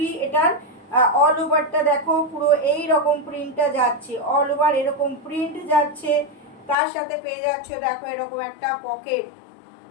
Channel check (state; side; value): drops out; right; at 6.8 s